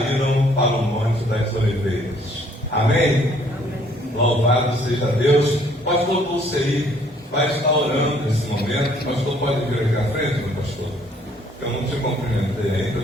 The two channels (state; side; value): normal; both; correlation 0.62